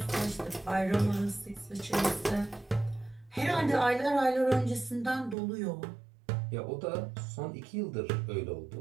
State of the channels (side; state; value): left; drops out; at 5.4 s